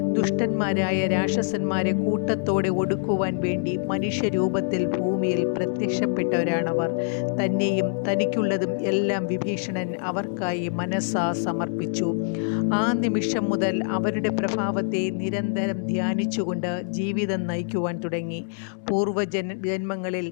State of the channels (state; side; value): silent; right; digital silence